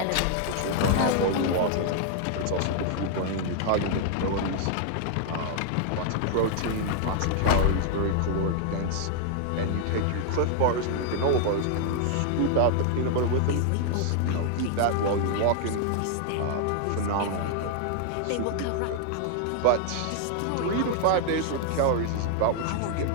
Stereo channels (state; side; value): different; both; correlation 0.00